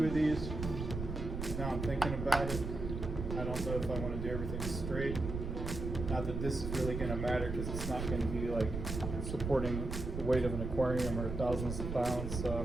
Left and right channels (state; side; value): noise; right; rumble, 4 dB below the sound